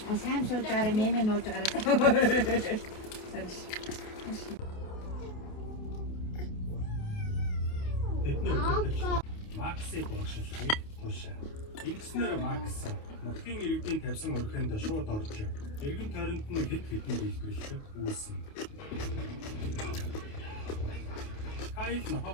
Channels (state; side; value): late; right; 28 ms